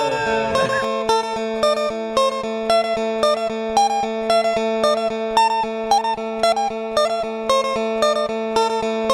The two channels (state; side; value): identical; both; correlation 1.00